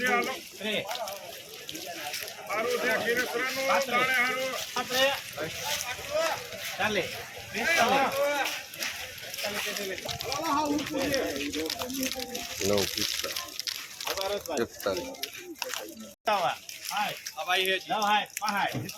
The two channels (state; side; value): identical; both; correlation 1.00